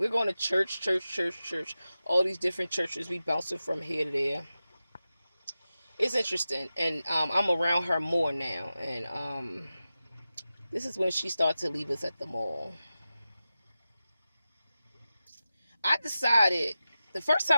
going to church. All these different churches. We bouncing from here to there. It's interesting. And I'm around her more now. And this is when she started to leave us at the mall. I decided, the first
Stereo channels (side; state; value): both; inverted; correlation -0.93